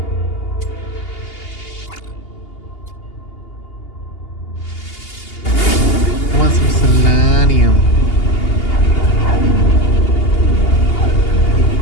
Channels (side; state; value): right; late; 2.8 ms